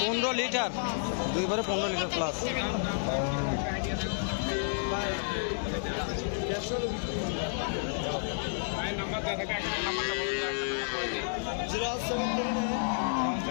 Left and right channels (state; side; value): silent; right; 57 dB below the other